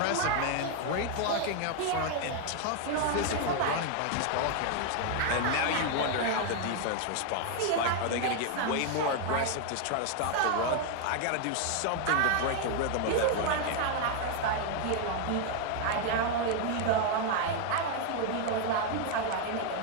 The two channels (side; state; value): both; different; correlation 0.00